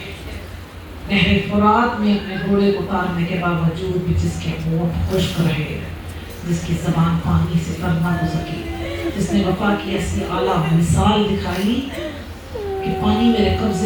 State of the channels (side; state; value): both; identical; correlation 1.00